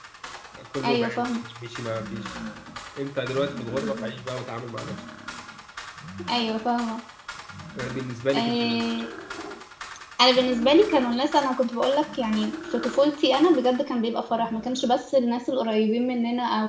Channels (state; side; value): identical; both; correlation 1.00